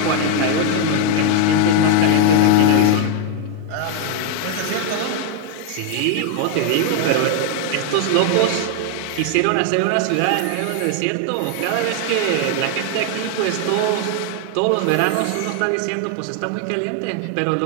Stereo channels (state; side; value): different; both; correlation 0.00